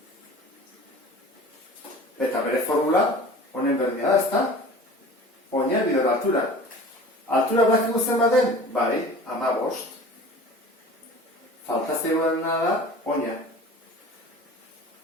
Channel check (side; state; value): both; normal; correlation 0.41